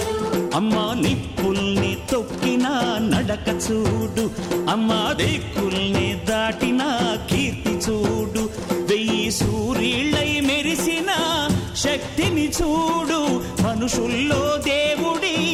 అమ్మా నిప్పుల్ని తొక్కిన నడక చూడు అమ్మా దిక్కుల్ని దాటిన కీర్తి చూడు వెయ్యి సూర్యుళ్ళై మెరిసిన శక్తిని చూడు మనుషుల్లో దేవుడి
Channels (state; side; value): identical; both; correlation 1.00